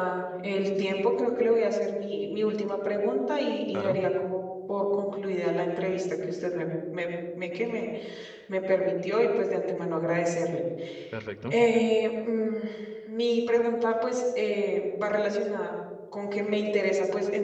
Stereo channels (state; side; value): identical; both; correlation 1.00